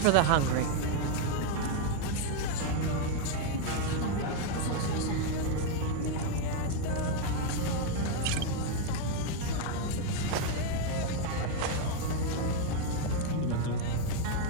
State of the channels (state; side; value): different; both; correlation 0.00